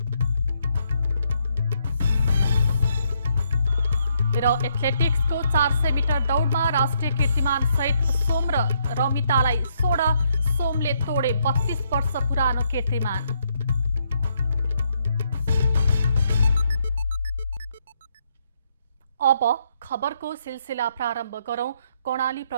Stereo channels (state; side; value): inverted; both; correlation -0.74